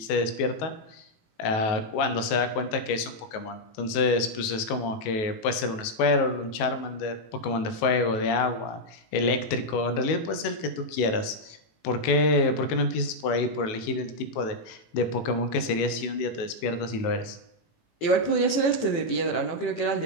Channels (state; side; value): late; right; 19 ms